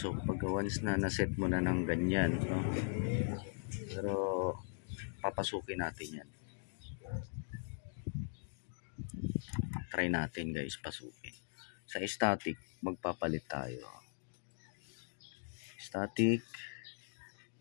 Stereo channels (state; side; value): silent; right; digital silence